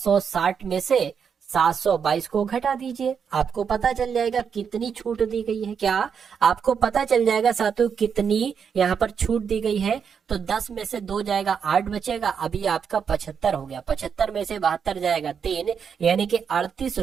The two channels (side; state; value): left; quieter; 6.9 dB